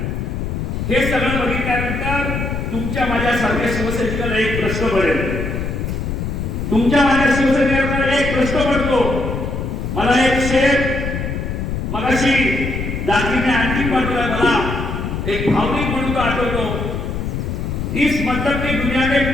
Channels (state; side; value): noise; left; rumble, 3 dB below the sound